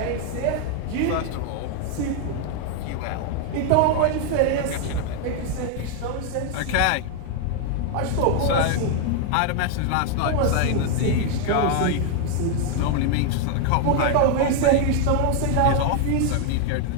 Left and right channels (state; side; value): different; both; correlation 0.00